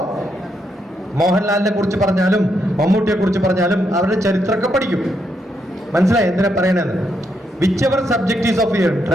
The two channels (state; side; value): normal; both; correlation 0.79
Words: മോഹൻലാലിനെ കുറിച്ച് പറഞ്ഞാലും മമ്മൂട്ടിയെ കുറിച്ച് പറഞ്ഞാലും അവരുടെ ചരിത്രമൊക്കെ പഠിക്കും. മനസ്സിലായി എന്തിനാ പറയണെന്ന്? Whichever subject is of your